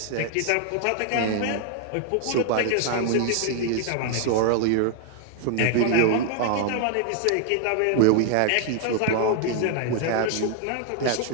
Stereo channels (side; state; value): both; different; correlation 0.00